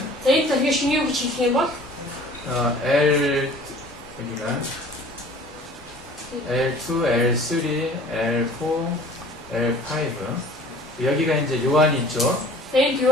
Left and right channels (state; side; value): normal; both; correlation 0.48